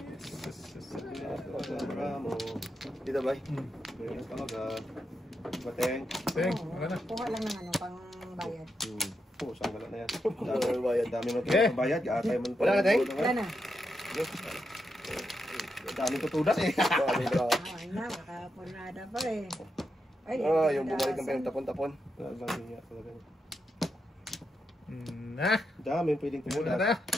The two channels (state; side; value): normal; both; correlation 0.85